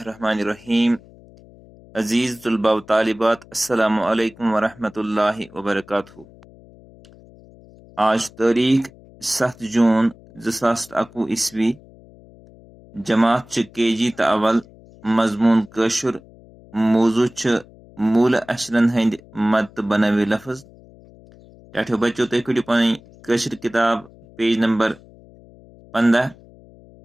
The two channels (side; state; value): left; noise; hum, 24 dB below the sound